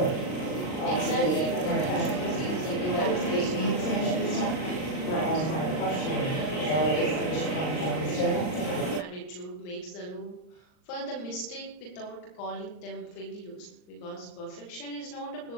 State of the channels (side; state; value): right; late; 39 ms